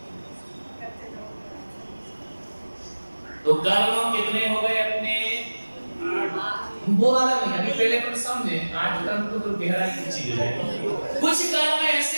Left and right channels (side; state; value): both; inverted; correlation -1.00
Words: तो कर्म कितने हो गए अपने? वो वाला नहीं, अभी पहले अपन समझे। 8 कर्म तो गहराई की चीज है। कुछ कर्म